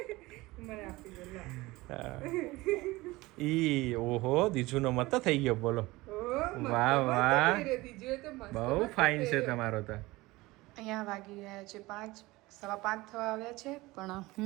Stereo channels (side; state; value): left; quieter; 20.5 dB